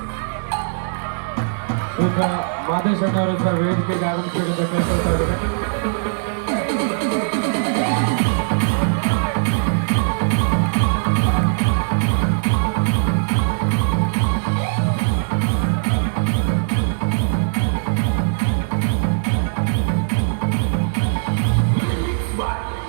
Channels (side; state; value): left; silent; digital silence